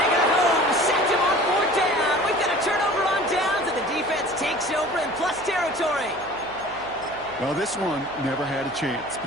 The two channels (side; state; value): right; noise; hum, 22 dB below the sound